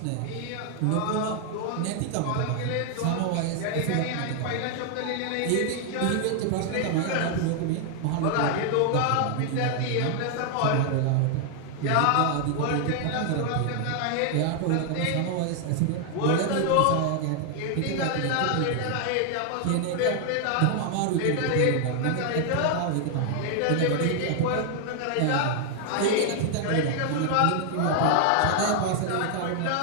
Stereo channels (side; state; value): both; different; correlation 0.00